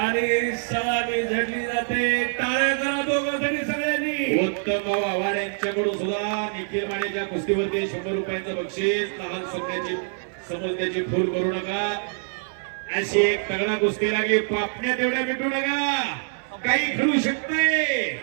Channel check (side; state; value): left; silent; 62 dB below the other